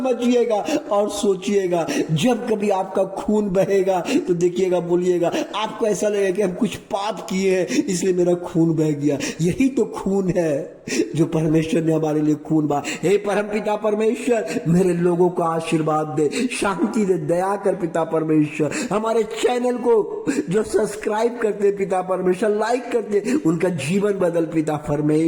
और सोचिएगा, जब कभी आपका खून बहेगा तो देखिएगा, बोलिएगा, आपको ऐसा लगेगा कि हम कुछ पाप किए हैं इसलिए मेरा खून बह गया। यही तो खून है जो परमेश्वर ने हमारे लिए खून बहा। हे परमपिता परमेश्वर मेरे लोगों को आशीर्वाद दे, शांति दे, दया कर पिता परमेश्वर। हमारे चैनल को जो सब्सक्राइब करते पिता परमेश्वर, लाइक करते, उनका जीवन बदल पिता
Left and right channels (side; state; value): both; identical; correlation 1.00